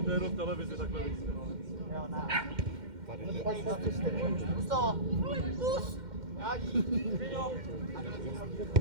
To je jenom v televizi takhle víc. jo, ne. Tady jde. Pus to! Pus! Jádí!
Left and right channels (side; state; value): left; late; 2.1 ms